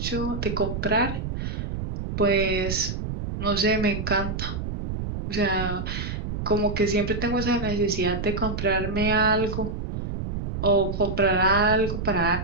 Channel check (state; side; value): noise; right; rumble, 5 dB below the sound